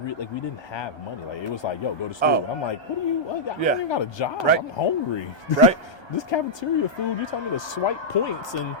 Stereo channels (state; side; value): late; right; 1.2 ms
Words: didn't have money. Like it was like, yo, go to school. Oh. I'm like, what do you? I don't Yeah. even got a job. Right. I'm hungry. Right. This cafeteria food, you telling me to swipe points, and